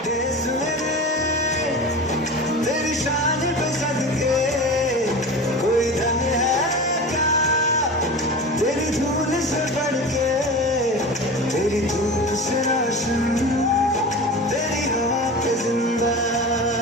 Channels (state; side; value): normal; both; correlation 0.31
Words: देश मेरे तेरी शान पे सदके कोई धन है क्या तेरी धूल से बढ़ के तेरी धूप से रोशन तेरी हवा पे जिंदा